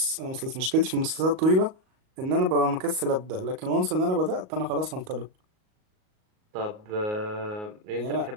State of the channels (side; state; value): left; late; 38 ms